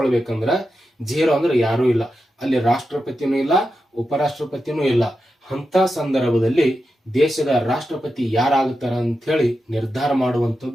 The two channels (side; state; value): both; normal; correlation 0.89